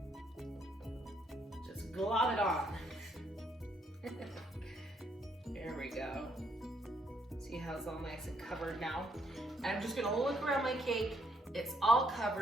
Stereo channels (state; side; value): normal; both; correlation 0.71